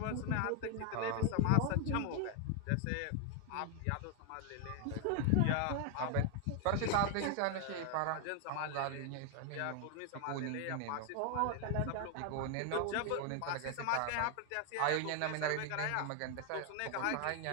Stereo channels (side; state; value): both; different; correlation 0.01